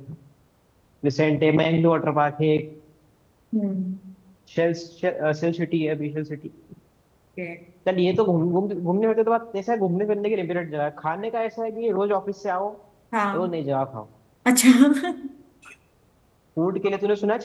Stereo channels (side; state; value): both; identical; correlation 1.00